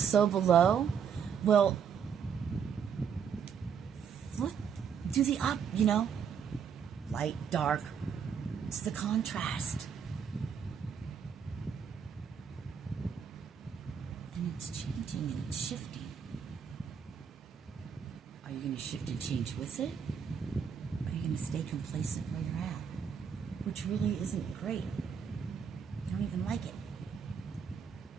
below. Well, flip, do the up, you know, light, dark. It's the contrast. And it's changing and it's shifting. Are you going to shift and change with it? Or are you going to stay complacent where you're at? Which really isn't great. You don't even like it.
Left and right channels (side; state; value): left; quieter; 7.2 dB